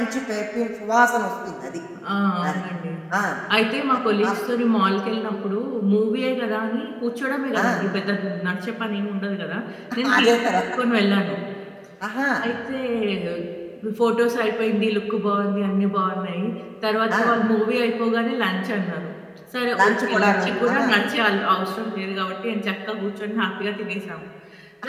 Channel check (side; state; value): both; identical; correlation 1.00